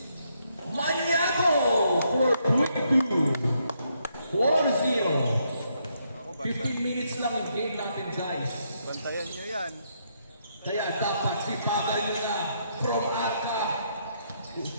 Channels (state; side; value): inverted; both; correlation -0.76